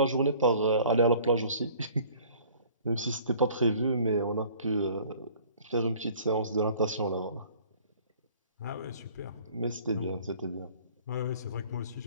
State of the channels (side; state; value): both; inverted; correlation -0.52